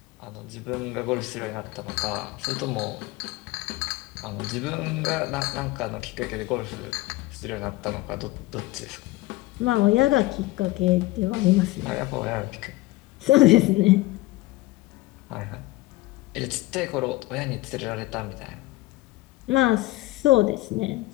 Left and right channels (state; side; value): quieter; right; 19.2 dB